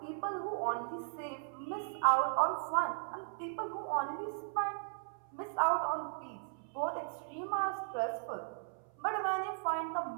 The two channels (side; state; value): left; silent; 53 dB below the other